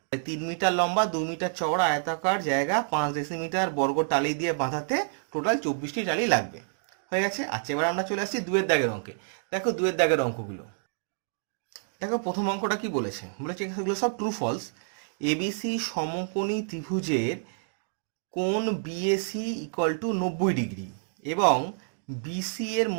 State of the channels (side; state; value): left; silent; digital silence